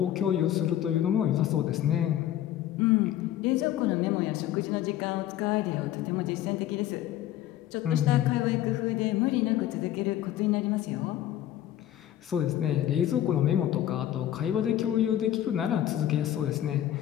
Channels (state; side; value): quieter; right; 12.3 dB